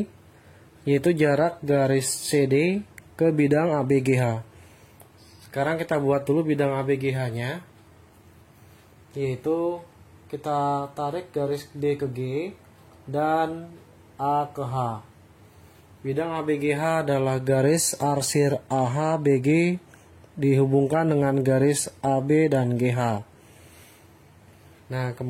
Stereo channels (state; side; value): identical; both; correlation 1.00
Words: yaitu jarak garis CD ke bidang ABGH. Sekarang kita buat dulu bidang ABGH-nya, yaitu kita tarik garis D ke G dan A ke H. Bidang ABGH adalah garis arsir AHBG dihubungkan dengan garis AB dan GH. Nah,